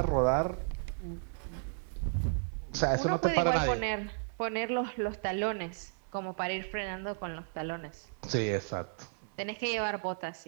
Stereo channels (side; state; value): left; silent; 55 dB below the other